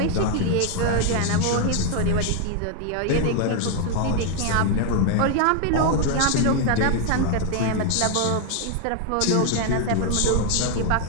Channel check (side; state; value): both; different; correlation 0.00